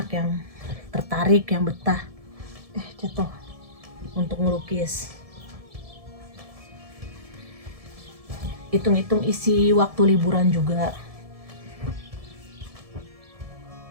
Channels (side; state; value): left; late; 1.7 ms